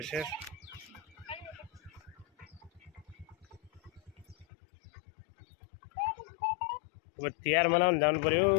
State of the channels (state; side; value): drops out; right; at 4.5 s